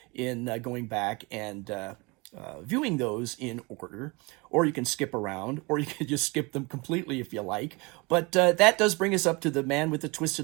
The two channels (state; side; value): quieter; left; 26.9 dB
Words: in going back and viewing those in order, or you can skip around, or you can just skip them completely if you like. But that does bring us up to The Man with the